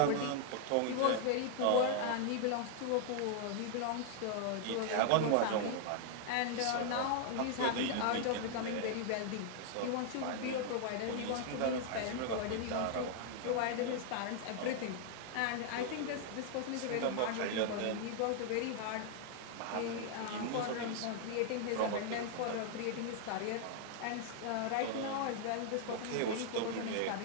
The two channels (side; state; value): both; different; correlation 0.00